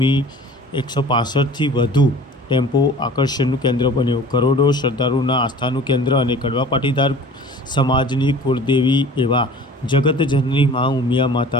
વધુ ટેમ્પો આકર્ષણનું કેન્દ્ર બન્યો. કરોડો શ્રદ્ધાળુઓના આસ્થાનું કેન્દ્ર અને કડવા પાટીદાર સમાજની કુળદેવી એવા જગતજનની માં ઉમિયા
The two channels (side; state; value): both; normal; correlation 0.44